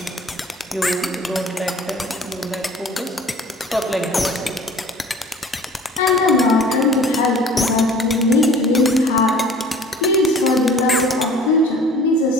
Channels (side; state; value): both; normal; correlation 0.47